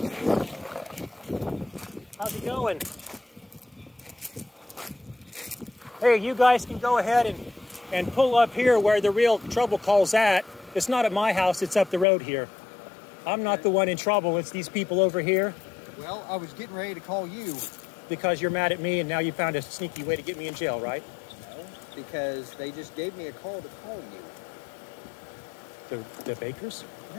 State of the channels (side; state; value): right; drops out; at 12.1 s